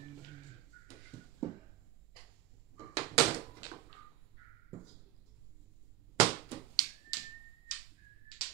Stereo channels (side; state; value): left; quieter; 14.7 dB